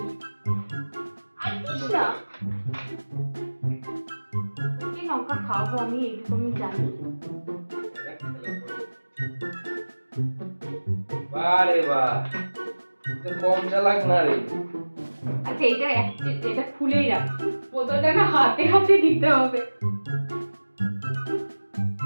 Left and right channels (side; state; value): both; inverted; correlation -1.00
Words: আচ্ছা কি লঙ্কা খাবো আমি এইটুকু আমি জানি। বারে বাহ কম চালাক না রে। আচ্ছা এটা খুলেই রাখ, বোতলটা না হাতে হাতে দিতে হবে।